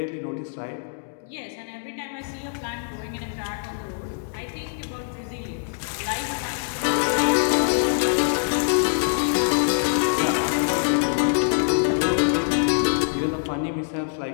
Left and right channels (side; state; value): right; silent; digital silence